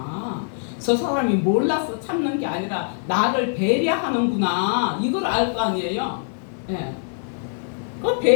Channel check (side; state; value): right; silent; digital silence